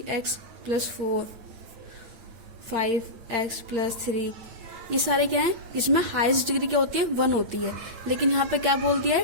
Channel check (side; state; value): left; late; 8.7 ms